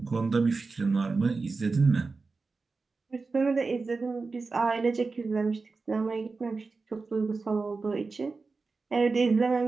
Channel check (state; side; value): quieter; left; 4.1 dB